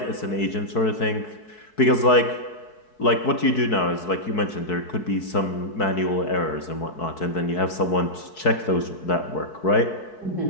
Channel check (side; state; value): right; late; 4.6 ms